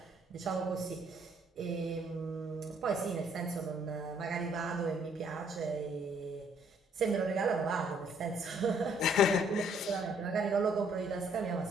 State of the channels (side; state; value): both; normal; correlation 0.65